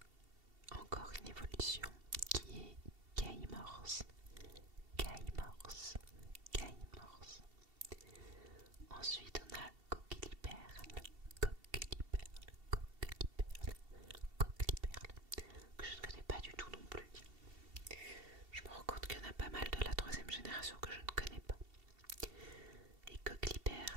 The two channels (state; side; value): late; left; 2.7 ms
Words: encore une évolution qui est Caïmorse, Caïmorse, Caïmorse. Ensuite on a Coqueliperle, Coqueliperle, Coqueliperle, Coqueliperle, que je ne connais pas du tout non plus. Je me rends compte qu'il y en a pas mal de la troisième génération que je ne connais pas. Et